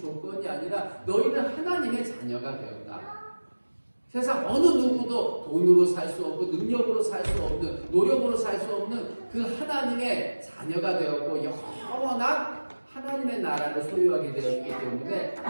아니라 너희는 하나님의 자녀가 되었다. 세상 어느 누구도 돈으로 살 수 없고 능력으로 살 수 없는 노력으로 살 수 없는 그 하나님의 자녀가 되었고 영원한 하나님의 나라를 소유하게 되었기 때문에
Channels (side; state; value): both; inverted; correlation -1.00